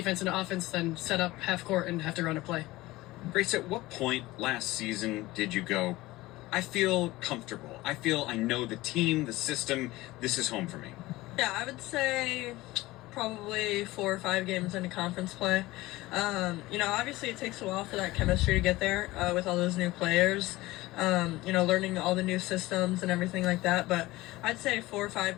into offense than set up half court and have to run a play. Grace, at what point last season did you go, I feel comfortable. I know the team, the system, this is home for me? Yeah, I would say probably 4 or 5 games into conference play. You know, obviously it takes a while for that chemistry to get there with all those new players. You know, learning all the new systems and everything like that. But I'd say 4 or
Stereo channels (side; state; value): right; quieter; 18.9 dB